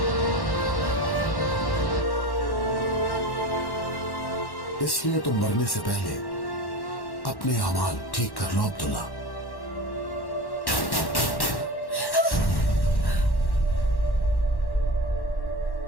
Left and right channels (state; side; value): late; right; 1.1 ms